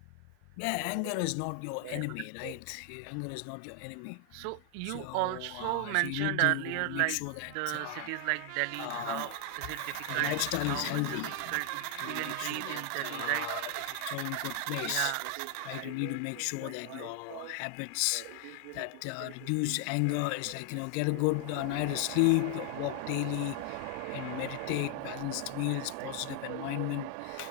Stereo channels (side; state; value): both; different; correlation 0.00